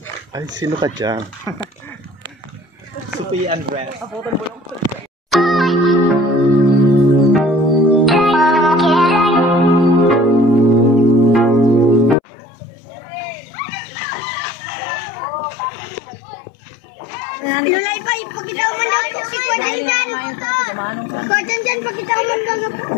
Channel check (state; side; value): drops out; right; at 12.2 s